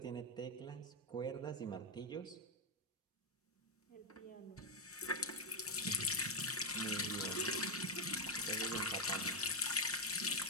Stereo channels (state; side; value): normal; both; correlation 0.04